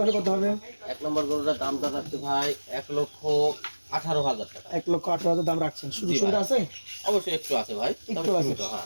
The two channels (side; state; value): both; inverted; correlation -1.00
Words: কত হবে? 1 নম্বর গরুটার দামটা রাখছে ভাই 1,18,000 টাকা। 1,18,000 দাম রাখছেন। সুযোগ জি ভাই। সুবিধা আছে? অবশ্যই একটু আছে ভাই, তবে একটু আছে, সীমিত, হ্যাঁ।